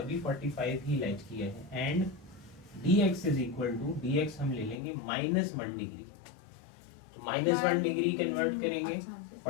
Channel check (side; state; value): right; drops out; at 4.8 s